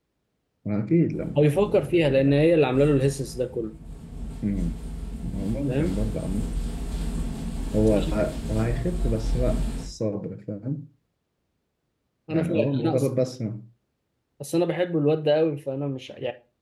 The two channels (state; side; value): identical; both; correlation 1.00